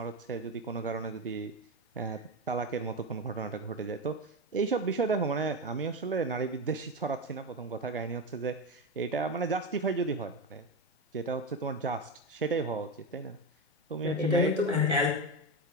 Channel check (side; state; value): both; normal; correlation 0.16